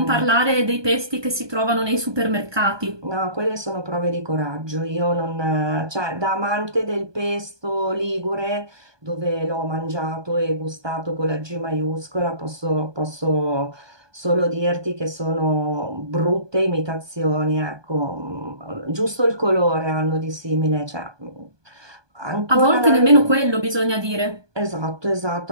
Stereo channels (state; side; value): late; left; 1.2 ms